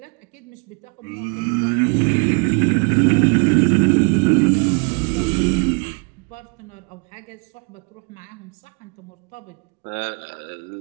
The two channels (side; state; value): left; quieter; 36.3 dB